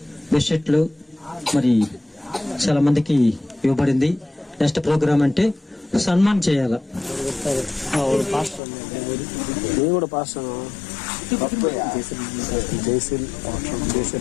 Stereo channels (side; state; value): right; drops out; at 8.6 s